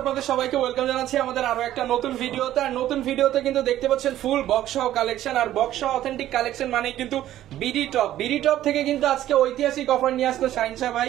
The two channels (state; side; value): quieter; left; 13.0 dB